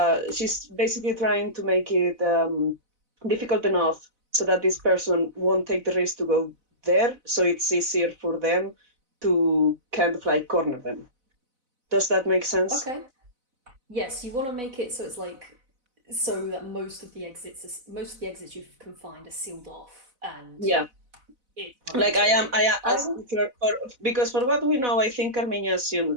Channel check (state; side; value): late; left; 4.0 ms